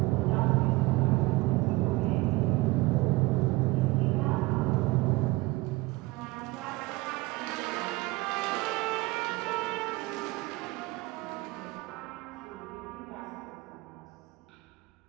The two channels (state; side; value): quieter; left; 21.7 dB